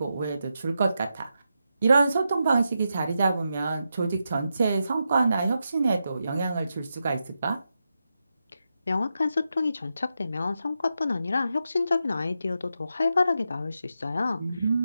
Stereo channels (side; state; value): both; inverted; correlation -0.87